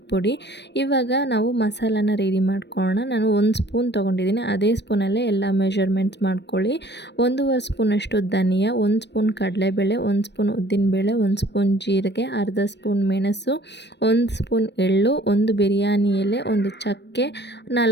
ಇವಾಗ ನಾವು ಮಸಾಲಾನ ರೆಡಿ ಮಾಡ್ಕೊಳ್ಳೋಣ. ನಾನು 1 ಸ್ಪೂನ್ ತೊಗೊಂಡಿದ್ದೀನಿ. ಅದೇ ಸ್ಪೂನಲ್ಲೇ ಎಲ್ಲ ಮೆಷರ್ಮೆಂಟ್ಸ್ ಮಾಡ್ಕೊಳ್ಳಿ. 1.5 ಸ್ಪೂನಷ್ಟು ಧನಿಯಾ, 1 ಸ್ಪೂನ್ ಕಡಲೆಬೇಳೆ, 1 ಸ್ಪೂನ್ ಉದ್ದಿನಬೇಳೆ, 1 ಸ್ಪೂನ್ ಜೀರಿಗೆ, ಅರ್ಧ ಸ್ಪೂನ್ ಮೆಣಸು, 1 ಸ್ಪೂನ್ ಎಳ್ಳು, 1 ಬಿರಿಯಾನಿ ಎಲೆ, 1 ಚಕ್ಕೆ,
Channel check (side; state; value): right; late; 0.50 ms